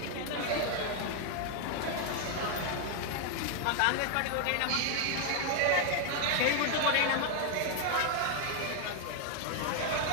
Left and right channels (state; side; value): different; both; correlation 0.00